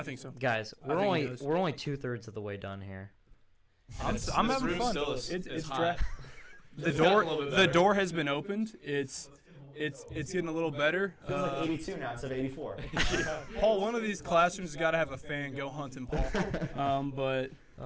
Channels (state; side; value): identical; both; correlation 1.00